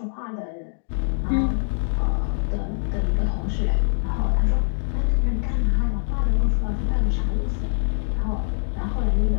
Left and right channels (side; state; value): right; silent; digital silence